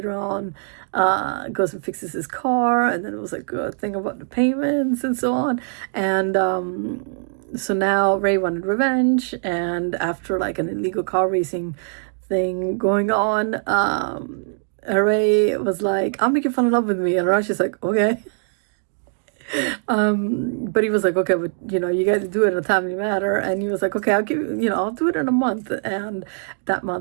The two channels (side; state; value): left; silent; digital silence